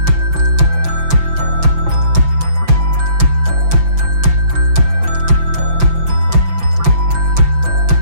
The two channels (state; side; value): late; left; 5.9 ms